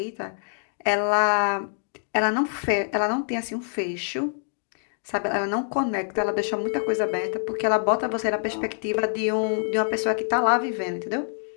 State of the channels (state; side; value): silent; right; digital silence